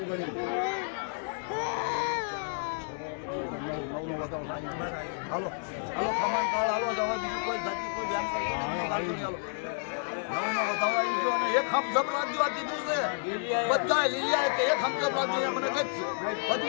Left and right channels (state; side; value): silent; right; digital silence